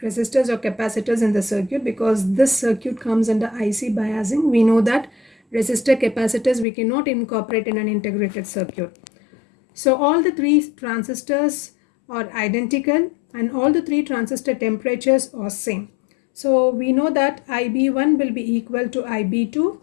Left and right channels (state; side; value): drops out; right; at 6.7 s